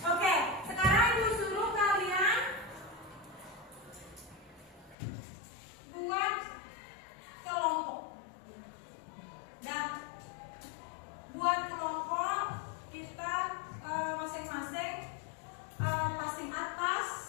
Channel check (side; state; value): right; drops out; at 5.0 s